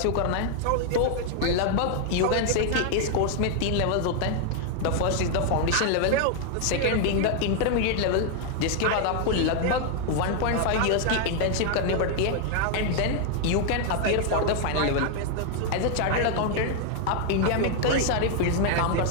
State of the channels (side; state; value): both; different; correlation 0.00